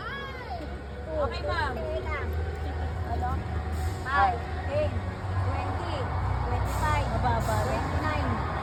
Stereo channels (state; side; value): identical; both; correlation 1.00